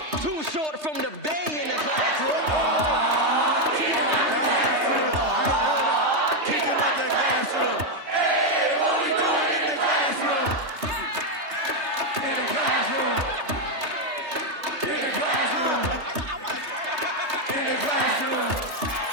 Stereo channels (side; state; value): left; late; 3.3 ms